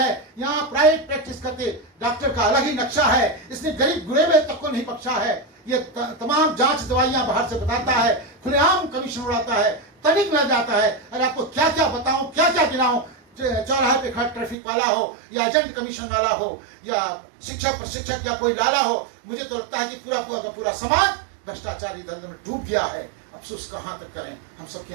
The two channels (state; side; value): drops out; left; at 14.6 s